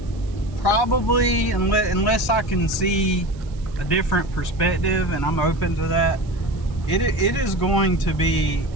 probably, unless I can see a different perspective, and I'm open to that, it is going to be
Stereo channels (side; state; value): right; noise; hiss, 27 dB below the sound